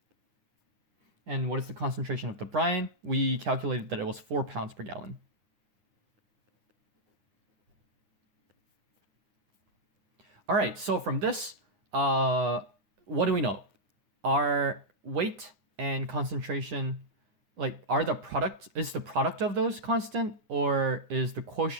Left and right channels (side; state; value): left; late; 10 ms